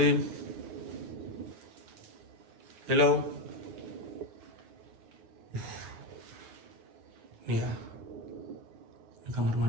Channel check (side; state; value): left; late; 9.4 ms